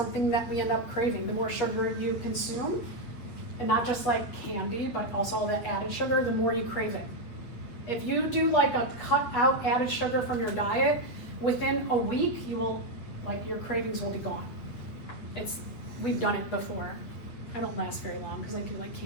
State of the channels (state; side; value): late; right; 8.7 ms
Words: that we end up craving. The more sugar you consume, and not just candy, but also the added sugar, the more you crave it. If you do a cut out added sugar from your diet, within a week, you will, your cravings will be gone. We've done it before. I don't last very long because I do like